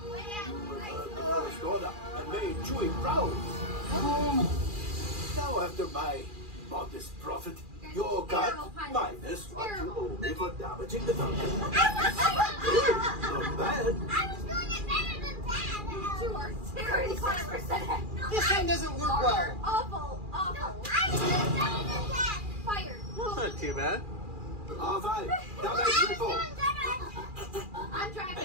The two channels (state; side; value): late; left; 2.4 ms